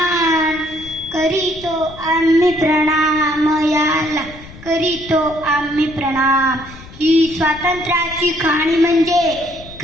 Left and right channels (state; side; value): noise; left; rumble, 18 dB below the sound